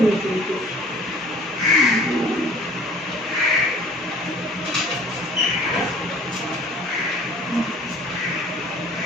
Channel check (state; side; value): normal; both; correlation 0.49